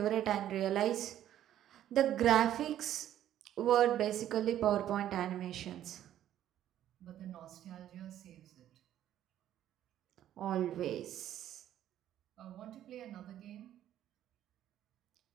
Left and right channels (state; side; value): quieter; left; 11.7 dB